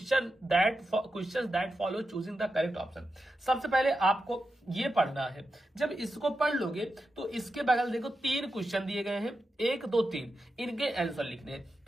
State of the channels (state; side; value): normal; both; correlation 0.89